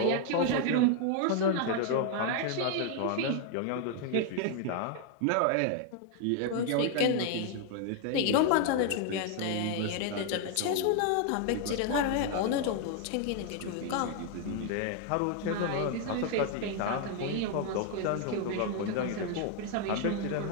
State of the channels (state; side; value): different; both; correlation 0.00